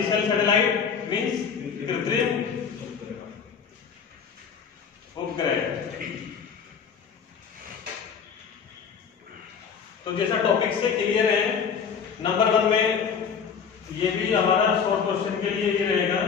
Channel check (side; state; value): right; quieter; 6.6 dB